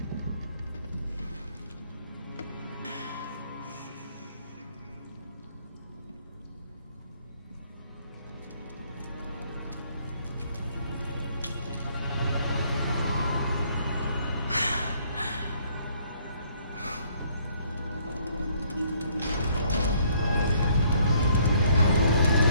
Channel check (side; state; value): both; inverted; correlation -0.64